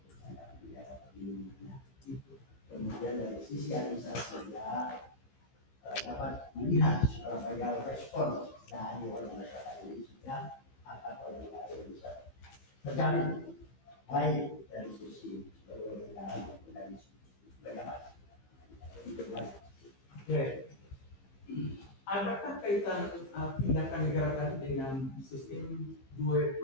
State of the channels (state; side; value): late; right; 15 ms